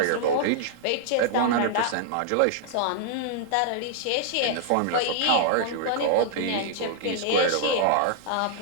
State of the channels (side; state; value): both; different; correlation -0.01